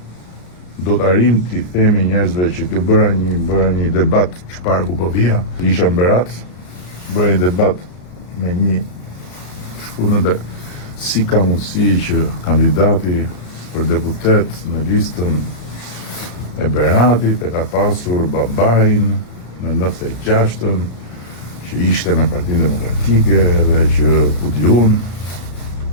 do të arrim t'i themi njerëzve që kjo bëra një debat çfarë ku po vija, isha në Berat, bëra një debat me një shkruan dhe si ka mundësi që kandidati për deputet në listën e Beratit e ka pasur babain në 96-ën që ishte me Partinë Demokratike dhe që ku di unë.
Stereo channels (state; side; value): late; right; 34 ms